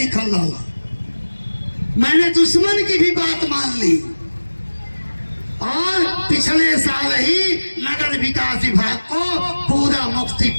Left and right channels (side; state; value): both; inverted; correlation -1.00